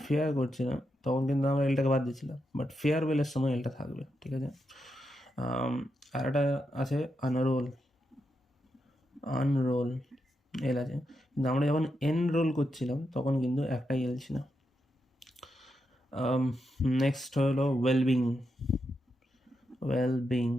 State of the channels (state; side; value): normal; both; correlation 0.85